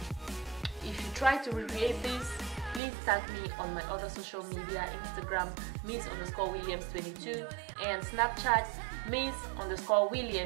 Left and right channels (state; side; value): drops out; left; at 2.8 s